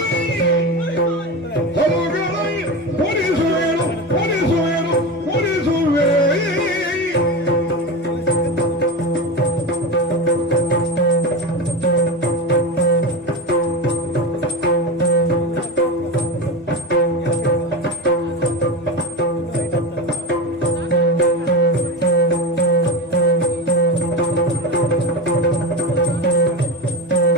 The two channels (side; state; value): both; normal; correlation 0.22